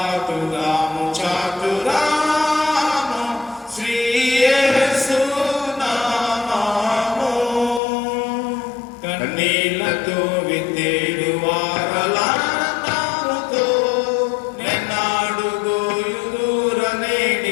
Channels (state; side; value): drops out; right; at 7.8 s